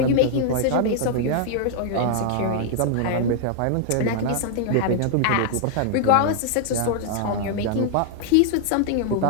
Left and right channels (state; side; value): different; both; correlation 0.00